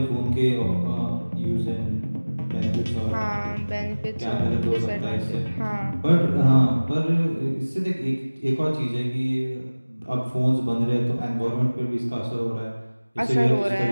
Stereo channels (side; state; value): both; inverted; correlation -1.00